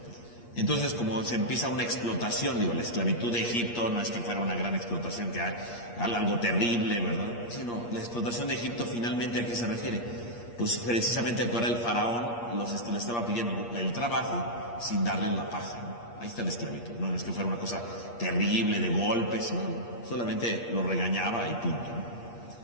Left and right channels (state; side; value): late; right; 8.5 ms